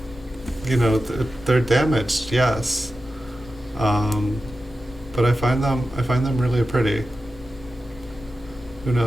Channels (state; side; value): normal; both; correlation 0.92